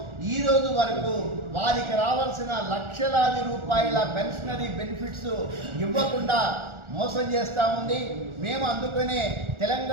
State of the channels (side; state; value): left; late; 1.4 ms